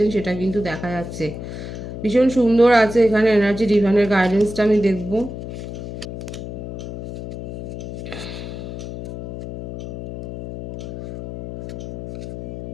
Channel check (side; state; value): left; noise; hum, 9 dB below the sound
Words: সেটা কিন্তু দেখা যাচ্ছে। ভীষণ সুন্দর আছে এখানে এনার্জি। ডিভাইনের গাইডেন্সটা আমি দেখব।